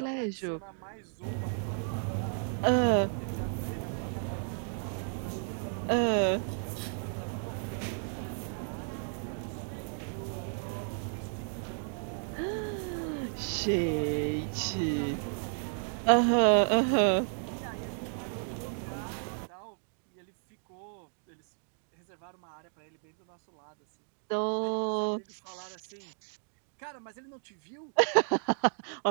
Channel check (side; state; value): left; silent; 56 dB below the other